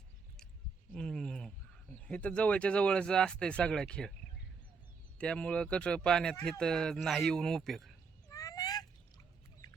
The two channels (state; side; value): quieter; left; 5.2 dB